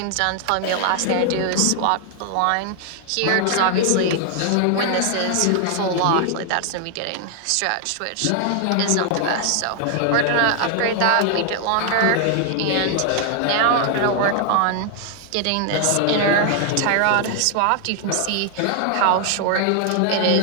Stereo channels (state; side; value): different; both; correlation 0.00